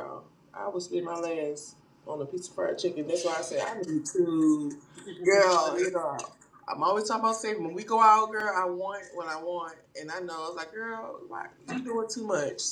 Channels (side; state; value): both; identical; correlation 1.00